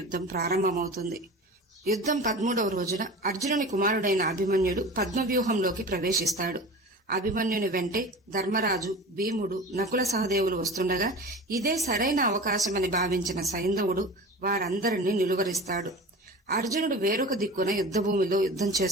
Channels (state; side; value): normal; both; correlation 0.35